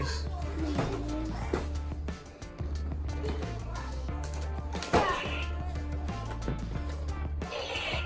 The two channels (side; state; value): both; identical; correlation 1.00